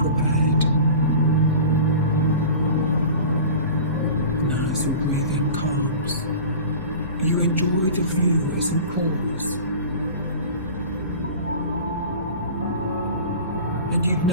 And as your breathing calms, you enjoy the view as you pause. And you'd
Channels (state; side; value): inverted; both; correlation -0.37